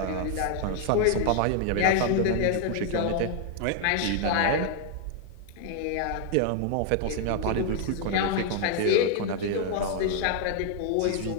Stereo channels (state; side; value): different; both; correlation 0.00